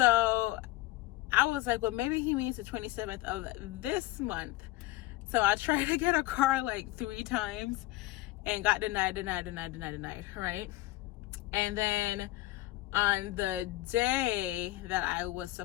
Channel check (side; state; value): right; quieter; 18.0 dB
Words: I was like, well, maybe he means the 27th of this month. So I tried to get a car like 3 times and got denied, right? And then on the day that I was